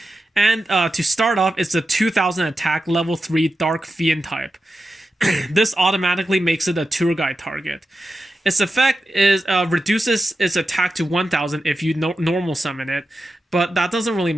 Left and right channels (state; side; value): normal; both; correlation 0.91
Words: and to start off, it's a 2000 attack, level 3 Dark Fiend type. This automatically makes it a tour guide target. Its effect is reduces its attack to 1000 if you normal summon it, but that doesn't really